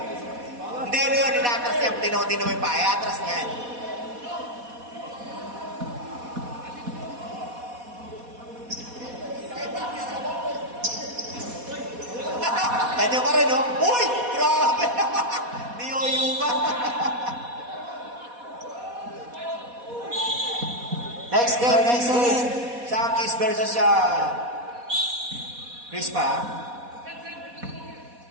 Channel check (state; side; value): late; left; 4.1 ms